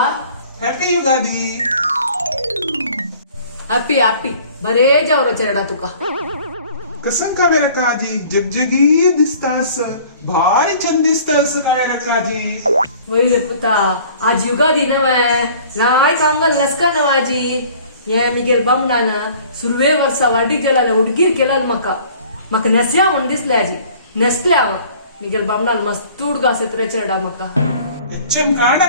happy Yugadi. Happy happy बरे जावरो चेडा तुका कसं कावेरा काजी जगजगी दिसतास भारी चंद दिसतास कावेरा काजी. वैर पुता आज युगादी नवे राय कांगल लसका नवाजी ये मिगेल बामणान सुरवे वर्सा वाडीक गेला उडगीर केला म्हाका नेस्या म्हण दिसले आजी नेसले हांव मिगेल बामणान मस्त उडगास येत रे चेडा म्हाका एचएम काणा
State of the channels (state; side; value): inverted; both; correlation -0.50